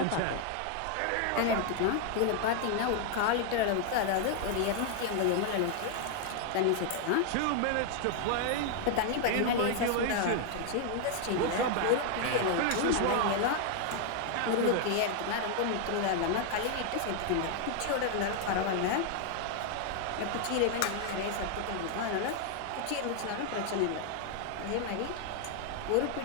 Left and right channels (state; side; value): different; both; correlation 0.00